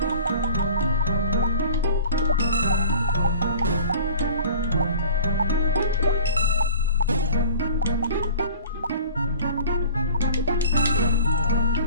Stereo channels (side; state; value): both; inverted; correlation -0.41